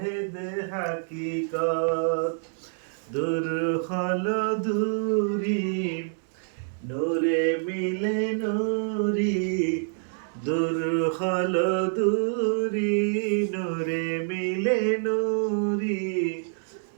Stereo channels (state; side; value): silent; left; digital silence